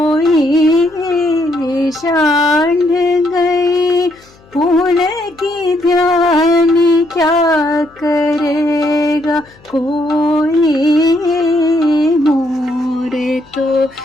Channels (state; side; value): noise; left; hum, 28 dB below the sound